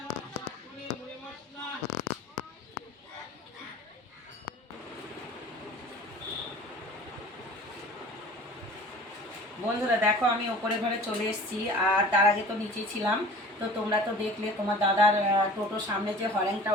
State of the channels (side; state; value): both; normal; correlation 0.43